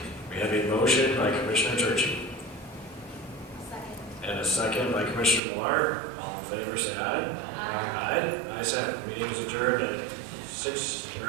We have a motion by Commissioner Turchi Second. and a second by Commissioner Millard. All in favor, say aye. Aye. Ayes have it. Meeting is adjourned at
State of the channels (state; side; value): drops out; left; at 5.4 s